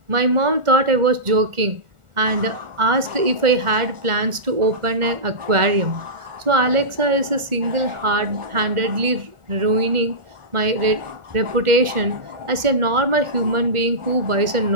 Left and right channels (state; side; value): late; left; 1.4 ms